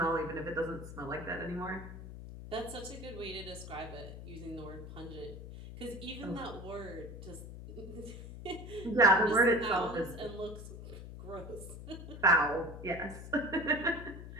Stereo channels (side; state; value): left; noise; hum, 11 dB below the sound